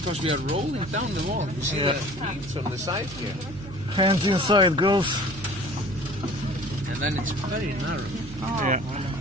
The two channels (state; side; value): noise; right; hum, 13 dB below the sound